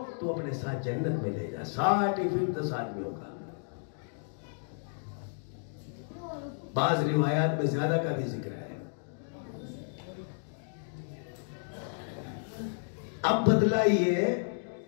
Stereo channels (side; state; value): right; silent; digital silence